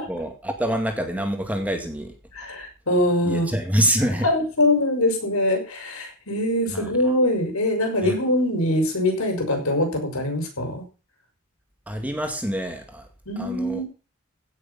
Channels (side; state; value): both; normal; correlation 0.04